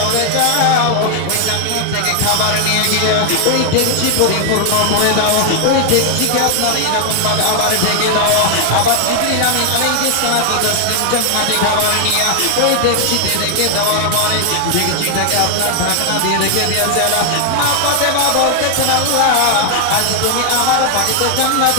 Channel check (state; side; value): different; both; correlation 0.00